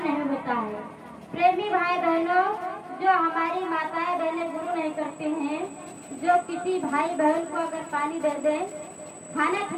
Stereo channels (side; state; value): both; identical; correlation 1.00